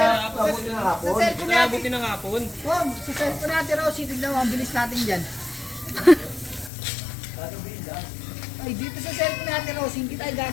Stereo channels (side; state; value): right; drops out; at 6.7 s